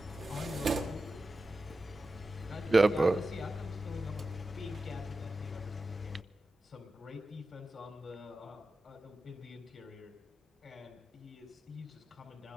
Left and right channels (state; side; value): normal; both; correlation 0.92